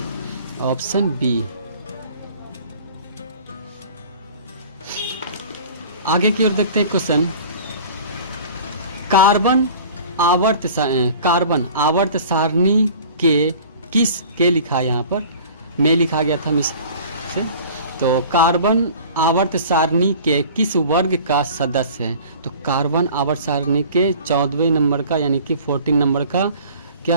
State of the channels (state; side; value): inverted; both; correlation -0.44